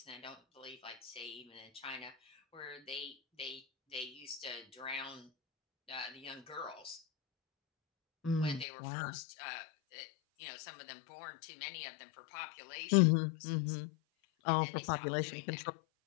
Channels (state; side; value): drops out; right; at 8.7 s